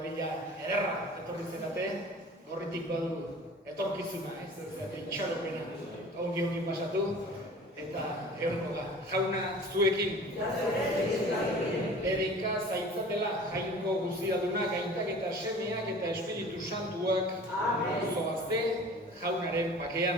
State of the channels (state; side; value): normal; both; correlation 0.43